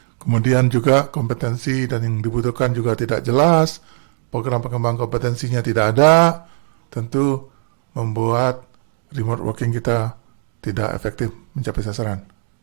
kemudian juga kompetensi dan yang dibutuhkan juga tidak jelas, program pengembang kompetensinya tidak ada, tentu membuat remote working kita tidak efektif mencapai sasaran.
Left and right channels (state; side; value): silent; left; digital silence